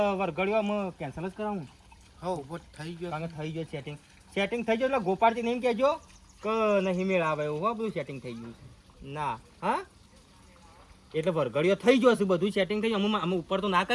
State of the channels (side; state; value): both; identical; correlation 1.00